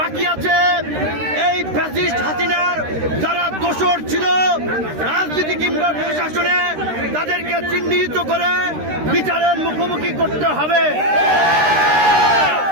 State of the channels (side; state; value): left; late; 13 ms